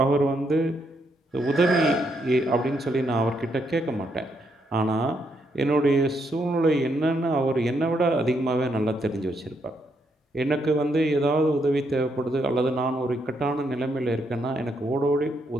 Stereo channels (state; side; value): normal; both; correlation 0.77